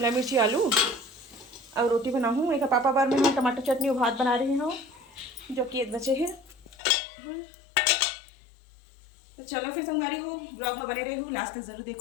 मिर्ची आलू और रोटी बनाऊँ। एक पापा बार में मैं टमाटर चटनी और भात बना रही हूँ जो कि एक बचे है। तो चलो फिर संगवारी हो, ब्लॉग में बने रहूँ, लास्ट तक जरूर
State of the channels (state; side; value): drops out; right; at 6.8 s